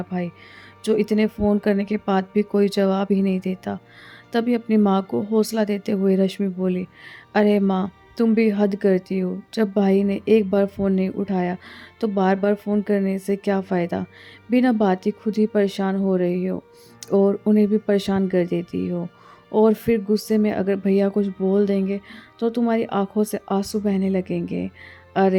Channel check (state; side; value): identical; both; correlation 1.00